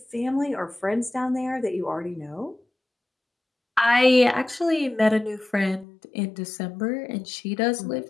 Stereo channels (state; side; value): drops out; right; at 5.9 s